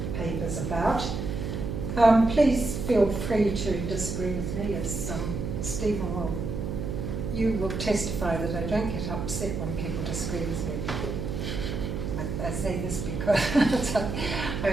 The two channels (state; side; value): noise; right; hum, 4 dB below the sound